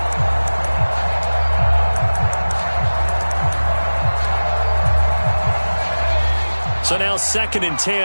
So now 2nd and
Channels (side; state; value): both; inverted; correlation -1.00